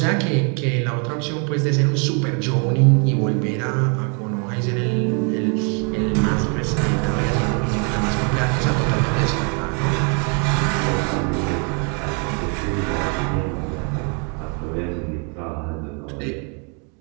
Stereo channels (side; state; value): left; quieter; 37.4 dB